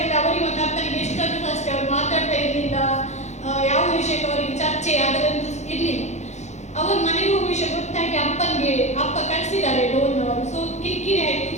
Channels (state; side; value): late; right; 0.33 ms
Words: ಅವರಿಗೆ ಮತ್ತೆ ಅಪ್ಪನಿಗೆ ಎಷ್ಟಂತ ಅಷ್ಟೇ ಅವ್ರು ಮಾತಾಡ್ತಾ ಇರಲಿಲ್ಲ, ಯಾವ ವಿಷಯಕ್ಕೆ ಅವರಿಗೆ ಚರ್ಚೆ ಅದರಂತೂ ಇರಲಿಲ್ಲ. ಅವರು ಮನೆಗೆ ಹೋಗುವ ವಿಷಯ ಗೊತ್ತಾಗಿ ಅಪ್ಪ ಕಳಿಸಿದ್ದಾರೆ ಲೋನ್ನವರು. ಸೊ ಕಿರಿಕಿರಿ ಆಯಿತು.